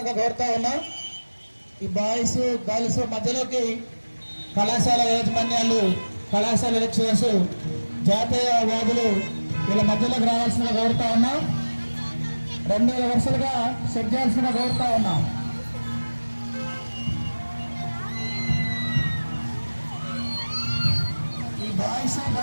కోరుతా ఉన్నాం. ఈ బాయ్స్ గర్ల్స్ మధ్యలోకి కళాశాల యాజమాన్యాలు, కళాశాల లెక్చరర్స్, జాతీయ వాదులు వీళ్ళ మధ్యలోకి రావాల్సిందిగా కోరుతా ఉన్నాం. 2 వరుసలుగా సెట్ చేయాల్సిందిగా కోరుతా ఉన్నాం. ఈ బాయ్స్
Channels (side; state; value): both; inverted; correlation -1.00